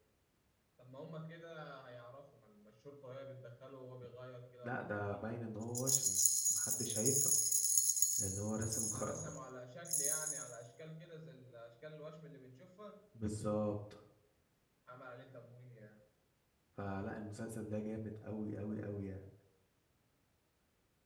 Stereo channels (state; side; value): identical; both; correlation 1.00